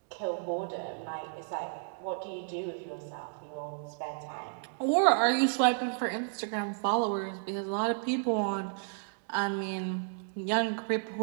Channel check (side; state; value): left; silent; digital silence